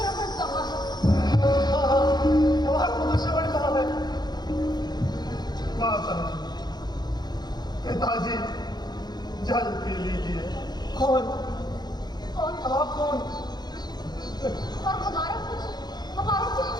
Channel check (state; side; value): late; right; 0.20 ms